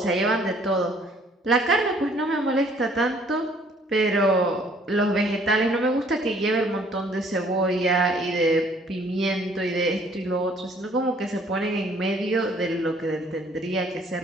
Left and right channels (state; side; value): normal; both; correlation 0.59